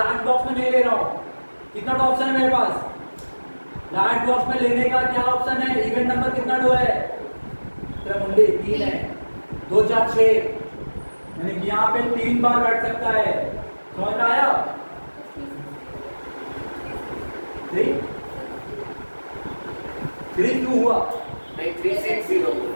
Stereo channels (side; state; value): both; inverted; correlation -1.00